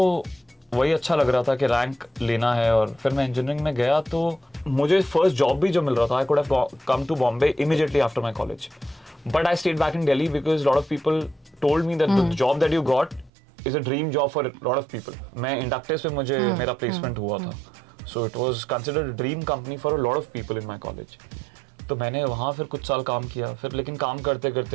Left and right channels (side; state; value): left; drops out; at 13.3 s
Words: वही अच्छा लग रहा था कि रैंक लेना है. और फिर मैं इंजीनियरिंग में गया तो मुझे फर्स्ट जॉब भी जो मिल रहा था I could have come to Bombay immediately after my college. But I stayed back in Delhi because a lot of people told me that the job that you got is a dream job for a lot of people. मैं Inductis पे मुझे मेरा placement हुआ था. So it was considered a dream company for a lot of people in my college. तो मैंने वहाँ फिर कुछ साल काम किया. फिर लेकिन काम करते